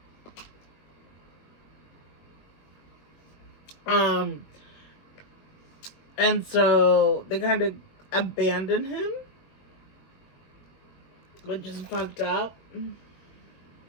And so they kind of abandon him, which is fucked up.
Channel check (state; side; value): late; right; 21 ms